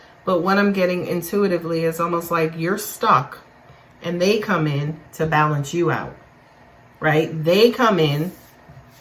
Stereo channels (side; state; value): both; identical; correlation 1.00